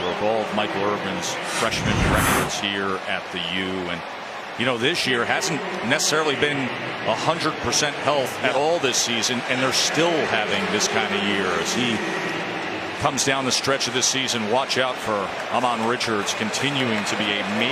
broke all of Michael Irvin's freshman records here at the U. And, you know, this year hasn't necessarily been 100% health at all this season, and they're still having this kind of year as he comes down the stretch of this season. Watch out for Amon Richards continuing to be a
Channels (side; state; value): both; identical; correlation 1.00